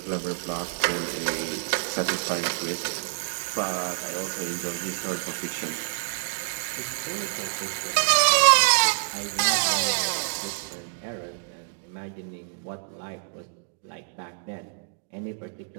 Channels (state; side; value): silent; left; digital silence